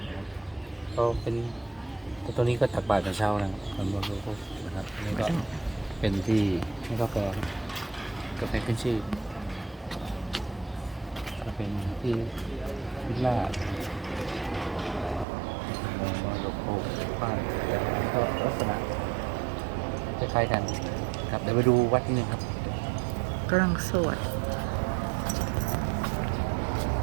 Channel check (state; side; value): drops out; left; at 15.2 s